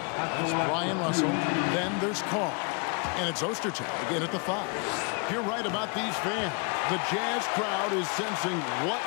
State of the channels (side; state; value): right; quieter; 35.1 dB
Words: That's Brian Russell. Then there's Karl. And it's Ostertag again at the 5. You're right about these fans. The Jazz crowd is sensing what